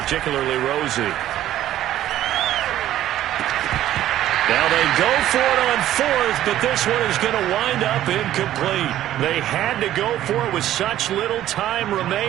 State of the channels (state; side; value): quieter; left; 12.9 dB